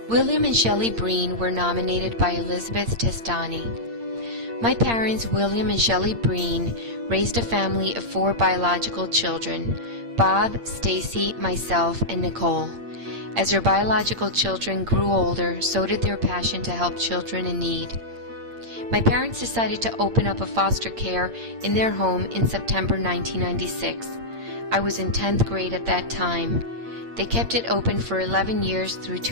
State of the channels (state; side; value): late; left; 8.7 ms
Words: William and Shelley Breen were nominated by Elizabeth Testani. My parents, William and Shelley Breen, raised a family of 4 biological children: Bob, Stacy, myself, and Nicole. As their biological children grew older, so did their passion to help children in need. My parents decided to open up a foster care in their home in September 1996. I was in 10th grade at that time. They kept it open for 11 years through